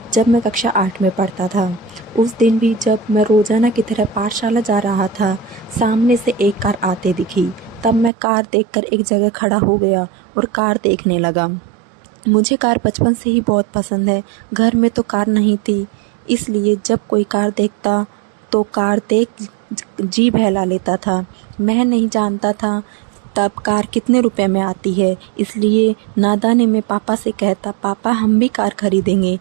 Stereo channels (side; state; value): left; drops out; at 8.1 s